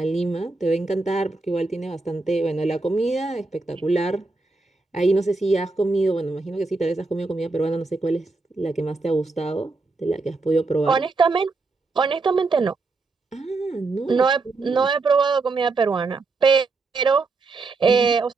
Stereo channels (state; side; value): quieter; left; 3.7 dB